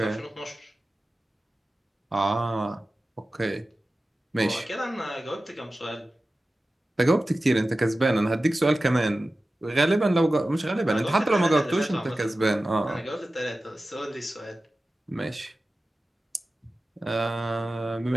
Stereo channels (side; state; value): both; normal; correlation 0.95